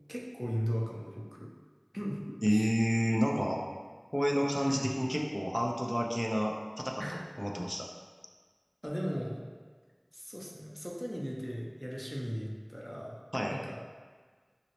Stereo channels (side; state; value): both; identical; correlation 1.00